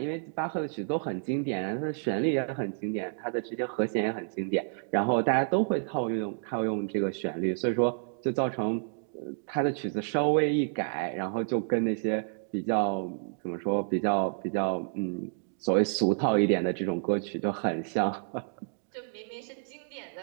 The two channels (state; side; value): silent; left; digital silence